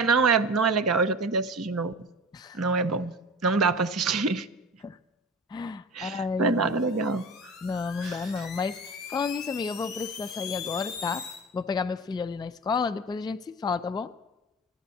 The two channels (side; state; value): both; normal; correlation 0.33